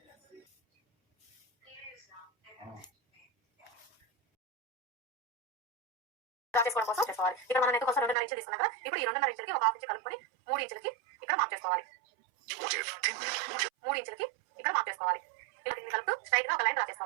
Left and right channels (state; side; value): drops out; left; at 8.2 s